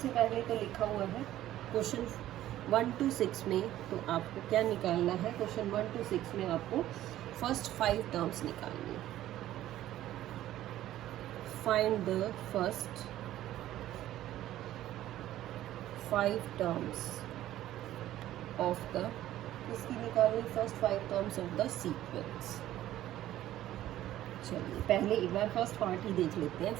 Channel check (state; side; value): quieter; left; 13.6 dB